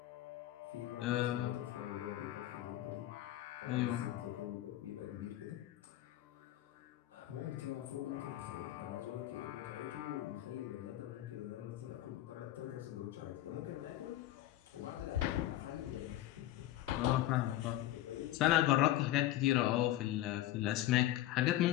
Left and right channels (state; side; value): quieter; right; 14.2 dB